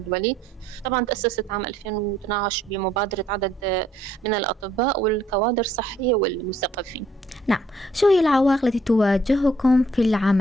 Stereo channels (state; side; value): normal; both; correlation 0.65